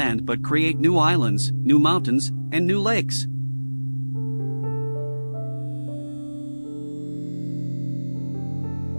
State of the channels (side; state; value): both; inverted; correlation -1.00